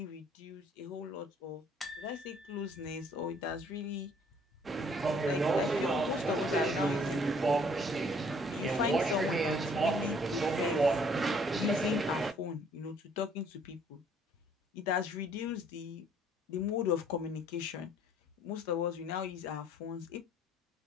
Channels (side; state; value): both; normal; correlation 0.61